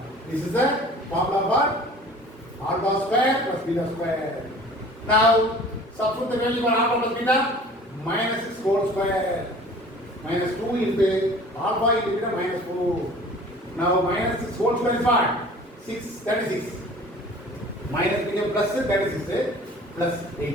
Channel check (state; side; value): normal; both; correlation 0.46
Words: This is the formula for alpha square plus beta square. Now substitute the value for alpha plus beta, minus 6 whole square. Minus 2 into alpha into beta minus 4. Now minus 6 whole square is what? 6, 36. Minus became plus 36 plus